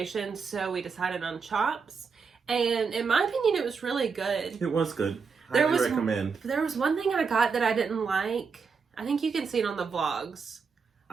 so we decided on Chops. And in my opinion, it was really good. It was good. I would recommend. There was one thing I got that I didn't like. I think you can see it on the vlogs.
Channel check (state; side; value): quieter; left; 5.4 dB